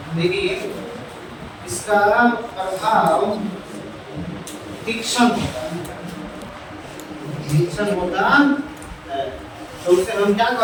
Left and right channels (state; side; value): identical; both; correlation 1.00